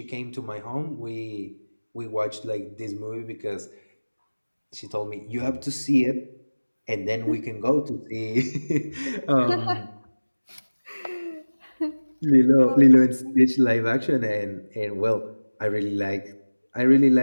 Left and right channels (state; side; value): inverted; both; correlation -1.00